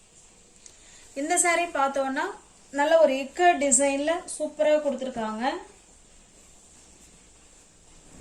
இந்த சாரி பார்த்தோம்னா நல்ல ஒரு இக்கட் டிசைன்ல சூப்பரா கொடுத்துருக்காங்க.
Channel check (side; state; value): both; identical; correlation 1.00